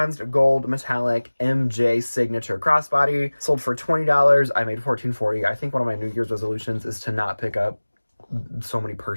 gold metallic MJ signature crossbody sold for $20. I made $14.40. I think one of my New Year's resolutions is to not pick up so many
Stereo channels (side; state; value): both; inverted; correlation -1.00